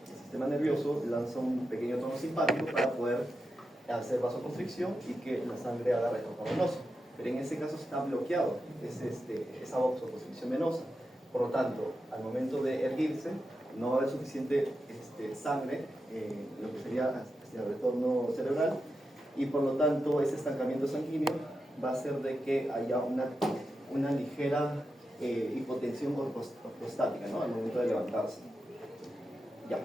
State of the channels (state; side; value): normal; both; correlation 0.89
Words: el sistema nervioso lanza un pequeño tono simpático para poder hacer vasoconstricción y que la sangre haga retorno venoso. Pero en ese caso está bloqueado, esa vasoconstricción venosa. Por lo tanto, al momento de erguirse, no va a haber suficiente sangre, lo que sería hacia el retorno cerebral, y por lo tanto ese estancamiento sanguíneo va a hacer de que haya una ligera hipotensión ortostática, ¿no? Al momento de levantarse. Ya,